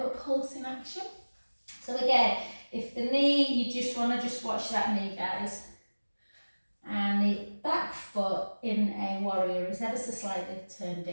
a pulsing action. So again, if the knee, you just want to just watch that knee, guys. And the back foot in a warrior is ever so slightly turned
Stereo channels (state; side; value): inverted; both; correlation -1.00